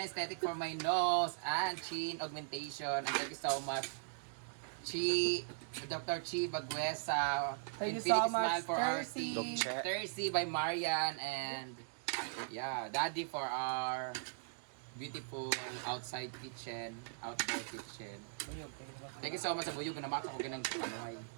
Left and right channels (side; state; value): left; silent; digital silence